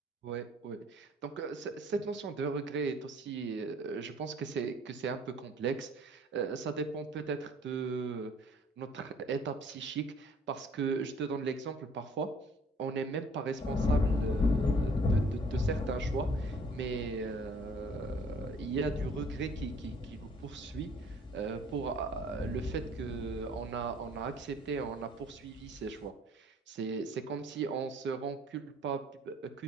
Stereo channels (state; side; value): normal; both; correlation 0.56